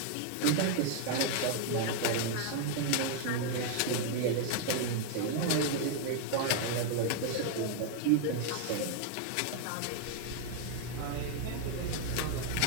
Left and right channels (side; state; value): both; different; correlation 0.01